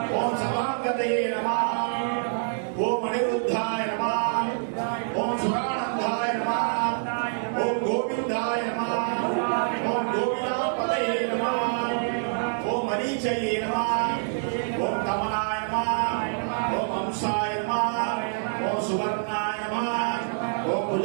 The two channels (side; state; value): left; silent; 61 dB below the other